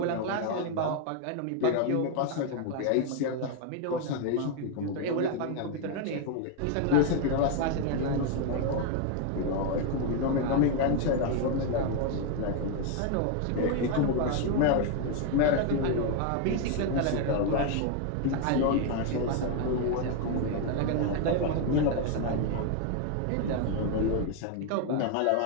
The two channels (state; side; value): different; both; correlation 0.01